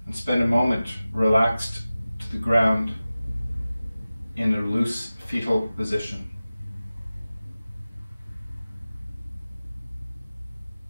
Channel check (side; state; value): both; inverted; correlation -0.96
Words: and spend a moment relaxed to the ground in a loose fetal position.